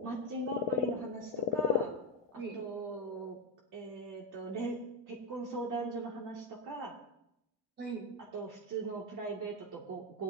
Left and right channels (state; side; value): normal; both; correlation 0.08